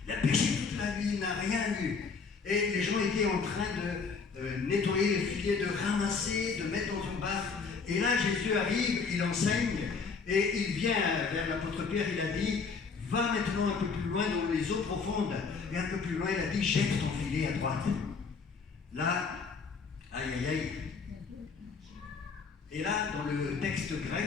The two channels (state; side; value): quieter; right; 5.1 dB